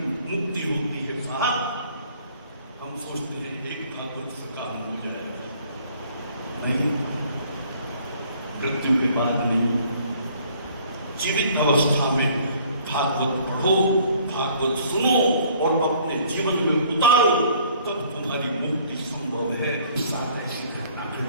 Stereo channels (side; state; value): both; inverted; correlation -0.57